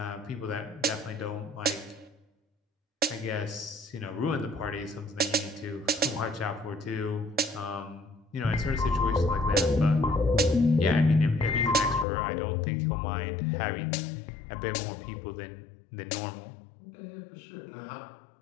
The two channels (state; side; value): drops out; right; at 12.1 s